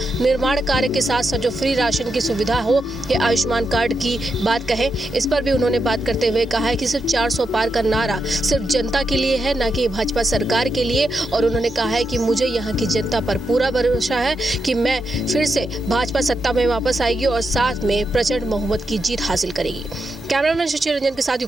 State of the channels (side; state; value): both; normal; correlation 0.85